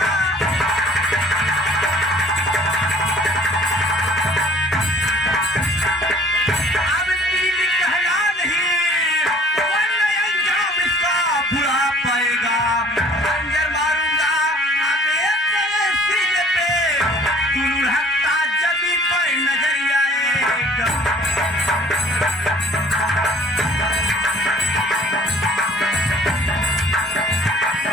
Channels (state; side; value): normal; both; correlation 0.53